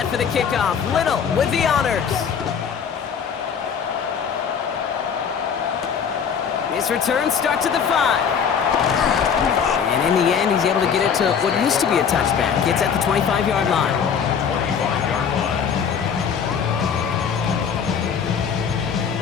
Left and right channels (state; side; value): quieter; right; 7.1 dB